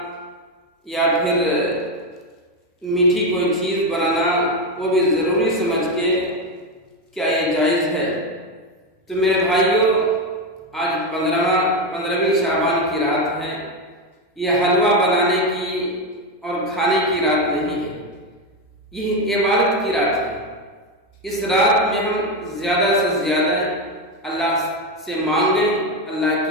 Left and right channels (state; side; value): normal; both; correlation 0.10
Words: یا پھر میٹھی کوئی چیز بنانا وہ بھی ضروری سمجھ کے کیا یہ جائز ہے؟ تو میرے بھائیوں، آج 15ویں شعبان کی رات ہے۔ یہ حلوہ بنانے کی اور کھانے کی رات نہیں ہے، یہ عبادت کی رات ہے۔ اس رات میں ہم زیادہ سے زیادہ اللہ سے مانگیں، اللہ